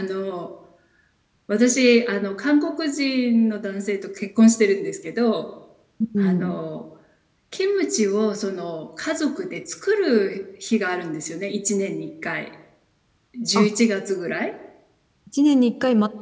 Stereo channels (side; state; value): both; identical; correlation 1.00